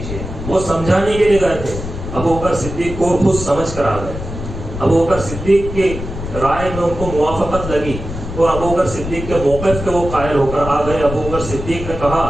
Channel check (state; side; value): noise; left; rumble, 8 dB below the sound